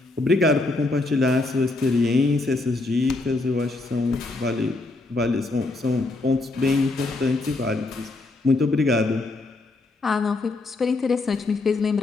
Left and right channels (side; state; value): right; quieter; 3.2 dB